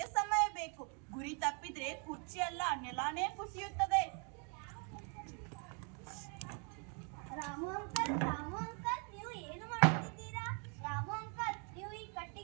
ಸಮಯ ಬೇಕು. ಗುರಿ ತಪ್ಪಿದ್ರೆ ಕುರ್ಚಿ ಅಲ್ಲ, ನೆಲಾನೇ ಕುಸಿಯುತ್ತದೆ. ರಾಮು ಅಂಕಲ್, ನೀವು ಏನು ಮಾಡುತ್ತಿದ್ದೀರಾ? ರಾಮು ಅಂಕಲ್, ನೀವು ಈ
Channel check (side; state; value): left; quieter; 37.9 dB